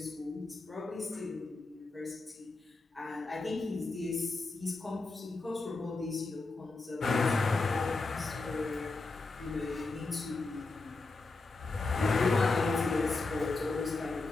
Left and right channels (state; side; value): quieter; right; 3.6 dB